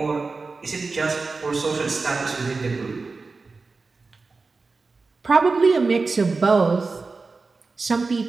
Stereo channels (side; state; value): left; quieter; 4.0 dB